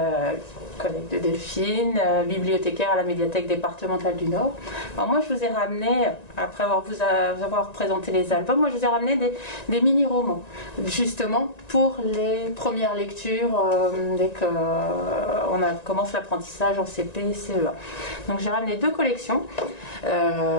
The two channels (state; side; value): late; right; 1.9 ms